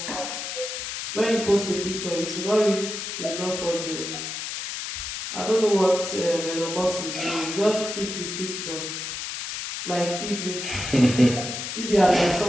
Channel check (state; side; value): noise; left; hiss, 5 dB below the sound